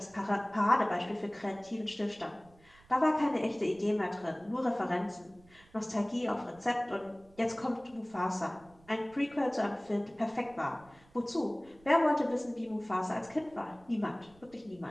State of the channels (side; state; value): right; noise; rumble, 27 dB below the sound